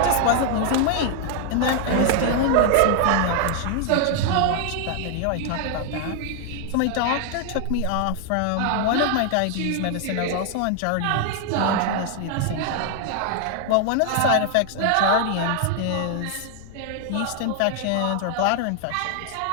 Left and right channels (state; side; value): different; both; correlation 0.00